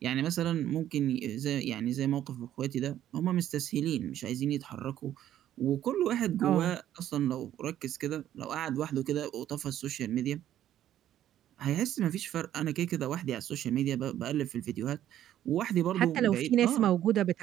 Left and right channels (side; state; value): left; quieter; 11.8 dB